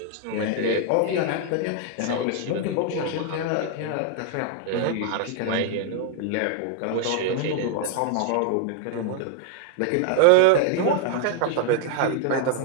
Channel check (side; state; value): both; different; correlation 0.00